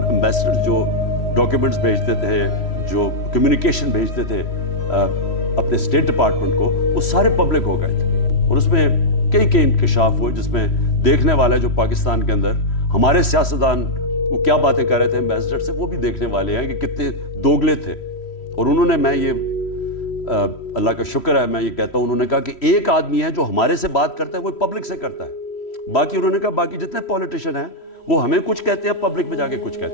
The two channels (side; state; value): right; late; 3.1 ms